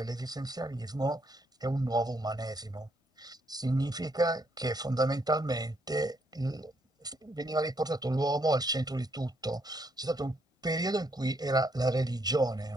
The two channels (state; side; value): normal; both; correlation 0.73